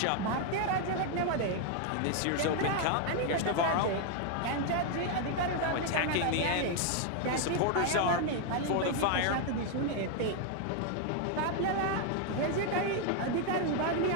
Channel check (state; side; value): different; both; correlation 0.01